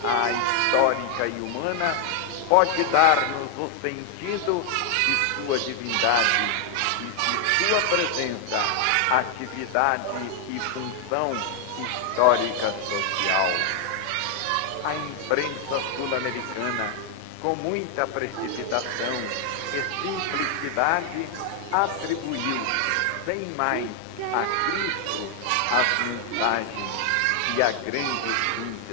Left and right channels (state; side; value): different; both; correlation 0.00